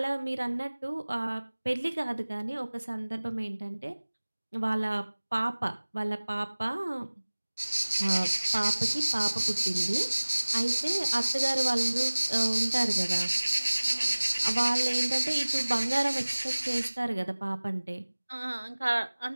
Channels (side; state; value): both; inverted; correlation -1.00